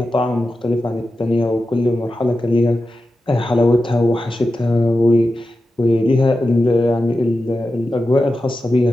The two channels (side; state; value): both; normal; correlation 0.92